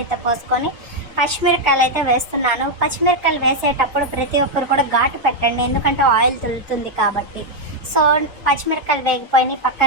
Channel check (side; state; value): both; normal; correlation 0.01